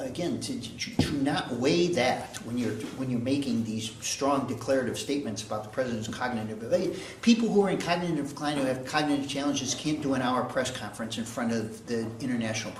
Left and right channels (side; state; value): both; identical; correlation 1.00